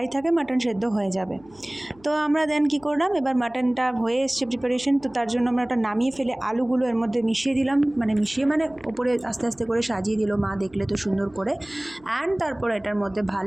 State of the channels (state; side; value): noise; left; hum, 28 dB below the sound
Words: থাকে মাটন সেদ্ধ হয়ে যাবে। তো আমরা দেন কী করলাম, এবার মাটনটা হয়ে এসছে প্রিপারেশন, তো তার জন্য আমরা ওটা নামিয়ে ফেলে আলুগুলো এর মধ্যে মিশিয়ে দিলাম, মানে ওপরে আস্তে আস্তে করে সাজিয়ে দিল মা, দেখলে তো সুন্দর করে। অ্যান্ড তারপর এটার মধ্যে